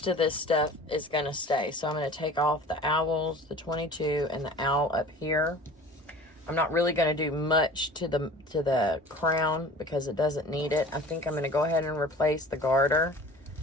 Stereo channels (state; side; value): normal; both; correlation 0.42